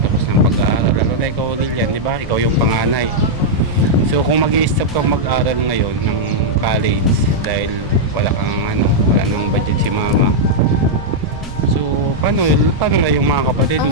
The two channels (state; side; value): noise; right; rumble, 14 dB below the sound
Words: ng pag-aaral, lalo na ikaw Lilian, di ba? Ikaw yung panganay. So kung mag-i-stop kang mag-aaral ngayon ng college dahil wala nang budget si mama, so paano na yung mga kapatid mo?